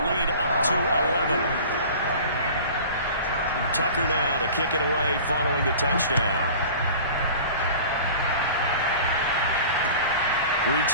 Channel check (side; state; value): both; inverted; correlation -0.41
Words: up to 11. Tucker now to kick it away following the touchdown.